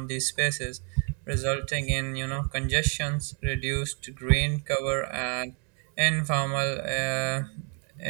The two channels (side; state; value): left; quieter; 39.3 dB